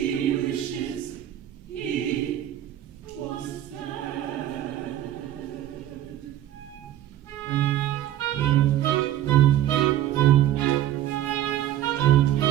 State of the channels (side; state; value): left; quieter; 12.4 dB